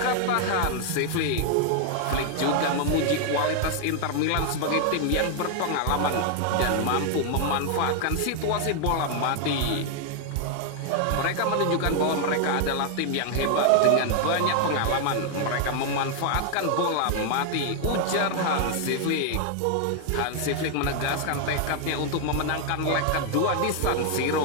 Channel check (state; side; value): different; both; correlation 0.00